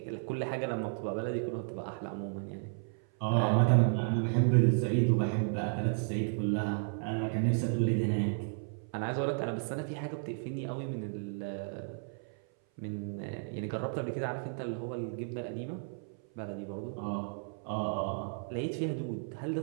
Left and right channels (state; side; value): silent; left; 56 dB below the other